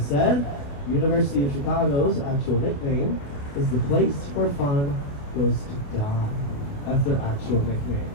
said, University of Chicago's actual nickname is the place where fun goes to die. That's their actual nickname.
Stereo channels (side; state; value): right; late; 28 ms